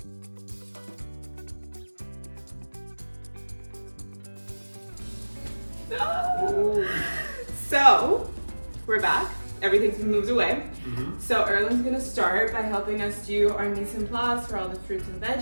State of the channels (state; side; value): inverted; both; correlation -1.00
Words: So, we're back. Everything's been moved away. So Erlen's gonna start by helping us do our mise en place for all the fruits and